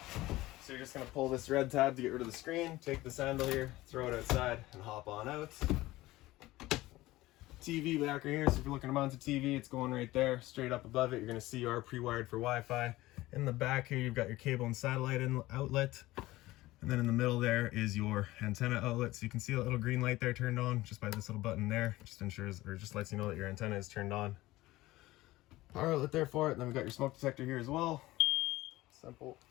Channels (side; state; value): right; quieter; 17.9 dB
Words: So you're just going to pull this red tab to get rid of the screen, take this handle here, throw it outside, and hop on out. TV back right here, so if you're looking to mount a TV, it's going right there. Straight up above it, you're going to see you are pre-wired for Wi-Fi. In the back here, you've got your cable and satellite outlet. And then in the middle there is your antenna outlet. So you can see a little green light there turned on just by this little button there. Just ensures, or just lets you know that your antenna is turned on. Power outlet there for it. And then we've got your smoke detector here as well. Simple.